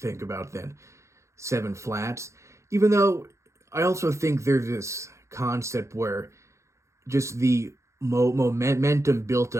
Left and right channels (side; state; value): left; late; 0.14 ms